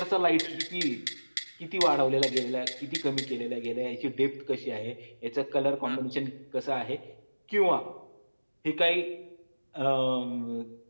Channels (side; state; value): both; inverted; correlation -1.00